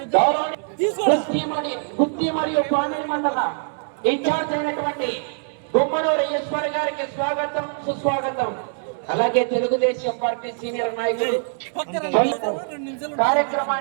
గుత్తి మరియు పామిడి మండల ఇన్ఛార్జ్ అయినటువంటి గుమ్మనూరు ఈశ్వర్ గారికి స్వాగతం సుస్వాగతం. అలాగే తెలుగుదేశం పార్టీ సీనియర్ నాయకులు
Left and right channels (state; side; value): silent; left; 63 dB below the other